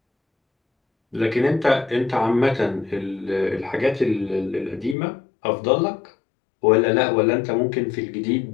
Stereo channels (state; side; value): drops out; right; at 5.0 s